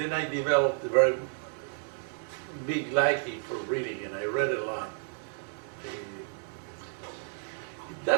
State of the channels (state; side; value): silent; left; 57 dB below the other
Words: I developed a very big liking for reading, and I read a lot.